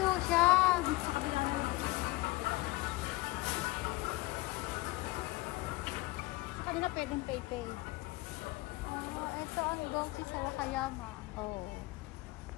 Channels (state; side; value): quieter; right; 20.2 dB